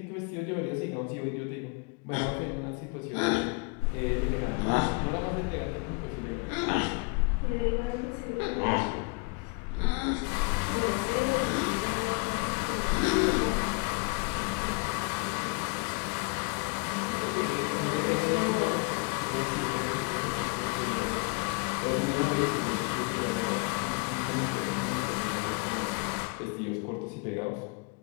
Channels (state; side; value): quieter; right; 31.8 dB